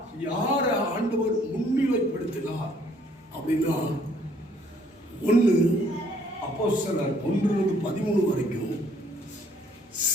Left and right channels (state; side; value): normal; both; correlation 0.62